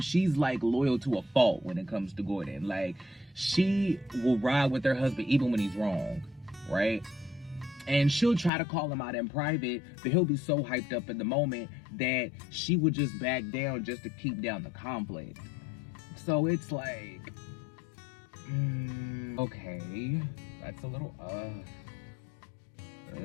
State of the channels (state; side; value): drops out; right; at 8.5 s